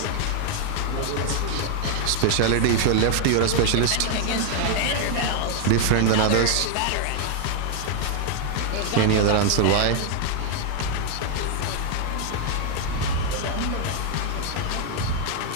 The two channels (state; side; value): different; both; correlation 0.00